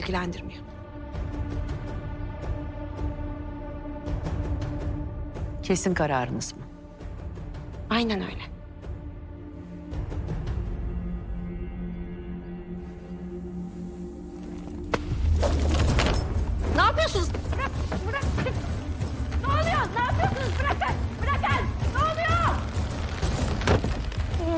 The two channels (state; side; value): identical; both; correlation 1.00